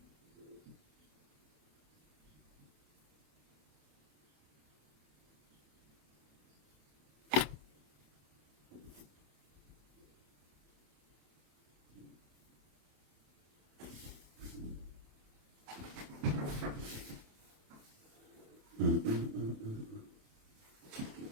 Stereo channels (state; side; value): late; left; 27 ms